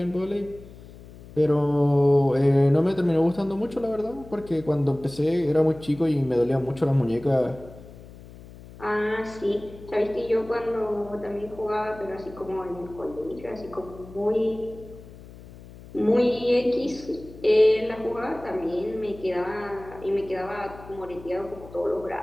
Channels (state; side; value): noise; left; hum, 18 dB below the sound